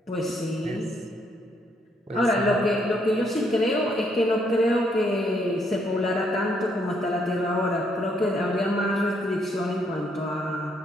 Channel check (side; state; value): both; normal; correlation 0.72